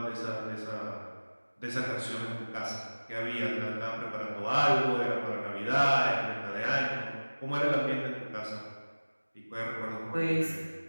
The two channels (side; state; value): both; inverted; correlation -1.00